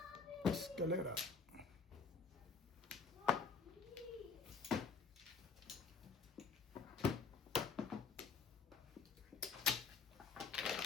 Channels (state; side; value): quieter; right; 5.0 dB